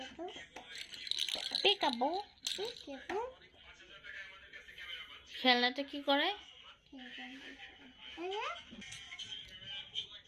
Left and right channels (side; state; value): both; identical; correlation 1.00